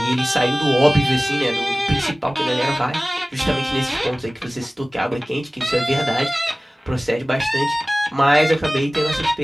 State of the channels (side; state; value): both; normal; correlation 0.98